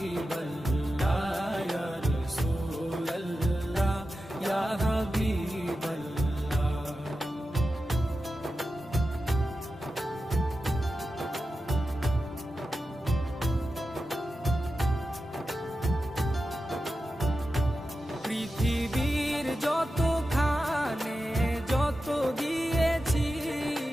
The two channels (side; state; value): both; normal; correlation 0.92